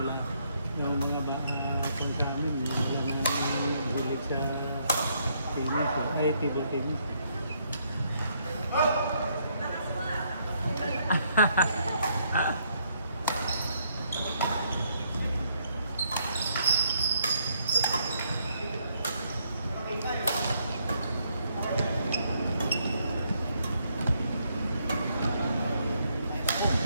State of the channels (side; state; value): both; inverted; correlation -0.72